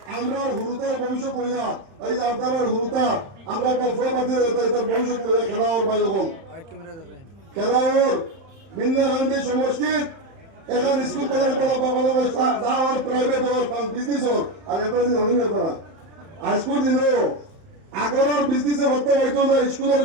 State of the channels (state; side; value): late; left; 30 ms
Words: আমরা হুরুতার ভবিষ্যৎ লইয়া এই যে আপনারা হুরুতা আমরা গল্পবাদী তার ভবিষ্যৎ লইয়া খেলাওর বাই হল খেলাওর বৃন্দা গান্ধী সমষ্টির এখন স্কুল কলেজ বাংলাদেশ যা আর প্রাইভেট হওয়ার বিজনেস হোক আর এটা দিন হই না করা আজকের দিনও আগরের বিজনেসে ভর্তি হইতো না স্কুলের